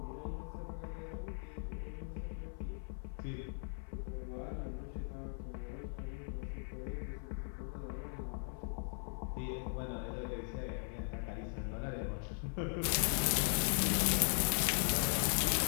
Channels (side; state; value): right; silent; 52 dB below the other